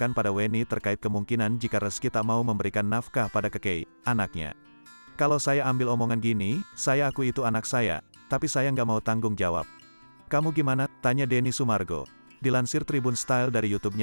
pada Weni terkait kemungkinan jika Rezky tak mau memberikan nafkah pada kekei, anaknya. Kalau saya ambil omongan gini, saya akui itu anak saya, tapi saya nggak mau tanggung jawab. Kamu gimana? Tanya Denny Sumargo. Dilansir Tribun Style dari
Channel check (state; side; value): inverted; both; correlation -1.00